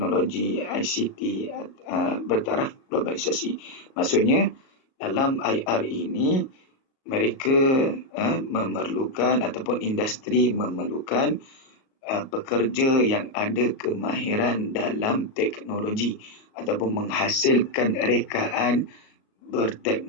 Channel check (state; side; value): late; right; 37 ms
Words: ICT bertaraf globalisasi. Maksudnya, dalam IR ini, mereka memerlukan ataupun industri memerlukan pekerja yang ada kemahiran dalam teknologi ataupun menghasilkan rekaan